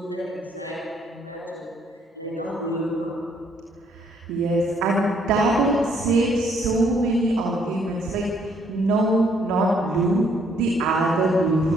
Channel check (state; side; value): normal; both; correlation 0.67